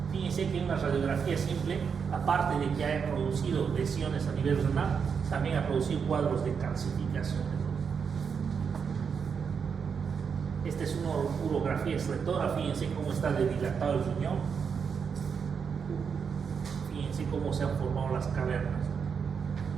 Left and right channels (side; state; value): left; quieter; 6.4 dB